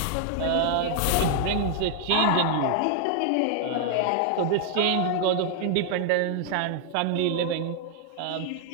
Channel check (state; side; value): different; both; correlation 0.00